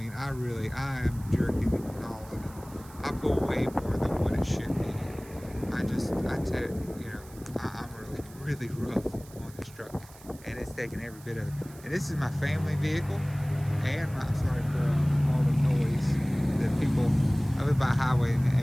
I am jerking and hauling, and I pull way more than what it should be. I'm really rough on this truck, and it's taking every bit of it. And this is my family vehicle, and I'm sorry for all the noise that people. I live by a highway, and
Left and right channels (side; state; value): right; noise; hiss, 22 dB below the sound